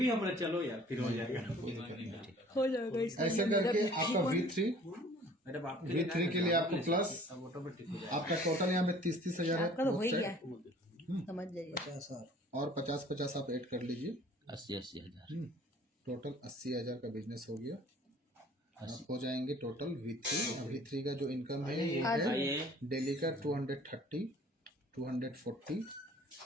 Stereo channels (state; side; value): normal; both; correlation 0.51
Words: हमारा चलो यार, फिर हो जाएगा। हो जाएगा इसका। ऐसे करके आपका मैडम आपके V3 के लिए आपको प्लस ऑटोमेटिक हो जाएगा। आपका टोटल यहाँ पे 30,000 है आपका तो हो ही both गया, side। समझ जाइए। 50,000 और 50 आप ऐड कर लीजिए, 80 हजार। टोटल 80,000 का बिजनेस हो गया। आप हो जाएंगे टोटल V3 का जो इनकम है ये है आइए डेली का 230 240